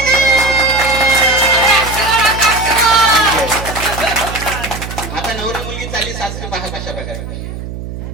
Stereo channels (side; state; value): right; noise; hum, 9 dB below the sound